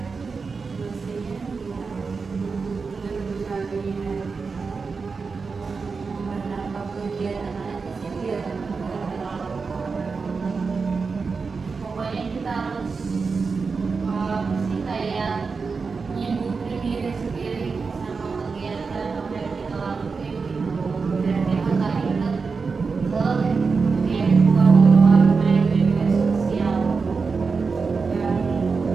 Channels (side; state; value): left; quieter; 4.8 dB